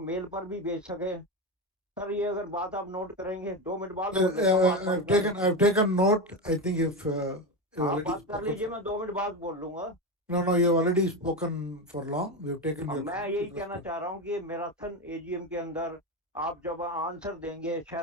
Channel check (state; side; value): normal; both; correlation 0.17